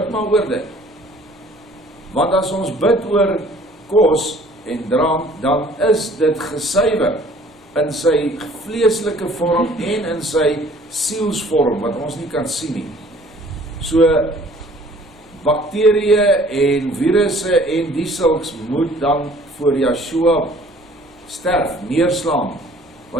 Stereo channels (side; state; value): both; normal; correlation 0.54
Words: maar oor dit. Want as ons bid oor kos en drank, dan is dit gesuiwer in sy vleeslike vorm en in sy sielsvorm, wat ons nie kan sien nie. So, bakterieë en virusse en die sulks moet dan voor Yeshua sterf, neerslaan,